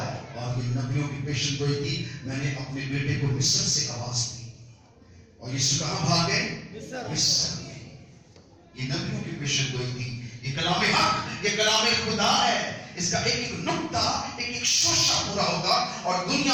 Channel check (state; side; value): identical; both; correlation 1.00